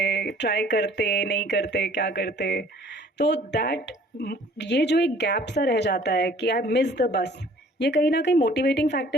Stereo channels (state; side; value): normal; both; correlation 0.54